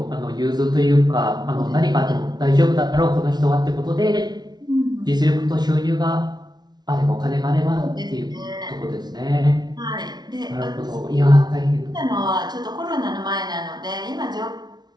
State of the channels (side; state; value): left; late; 0.19 ms